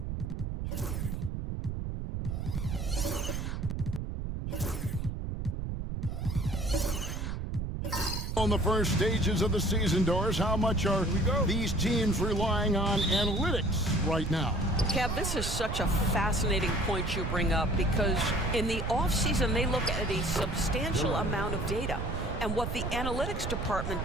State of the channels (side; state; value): right; noise; rumble, 3 dB below the sound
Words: On the first stages of the season, Doris, how much are these teams relying on analytics right now? Kev, this is such a fascinating point you bring up because in the offseason, they look at a substantial amount of data. And what the analytics department